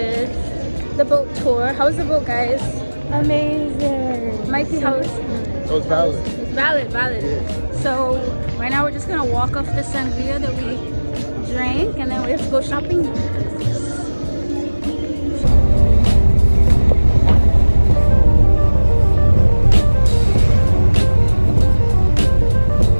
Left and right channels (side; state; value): both; inverted; correlation -1.00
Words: The boat tour. How was the boat, guys? Amazing. Mikey, how was it? Was valid. It's valid. Yeah. So right now we're just gonna walk off the sangria that we drank, and then we have to go shopping.